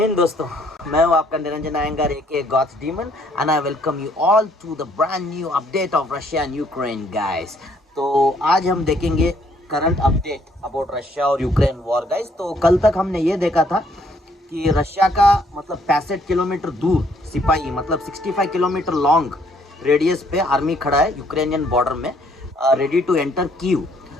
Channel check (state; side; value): normal; both; correlation 0.66